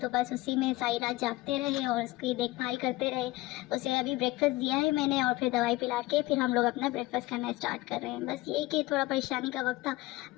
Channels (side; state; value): right; quieter; 19.4 dB